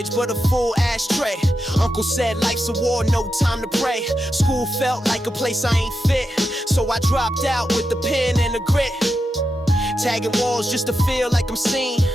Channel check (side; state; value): both; normal; correlation 0.87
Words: but a full ashtray. Uncle said life's a war, no time to pray. School felt like a place I ain't fit, so I dropped out with the pen and the grit. Tagging walls just to feel like I'm seen.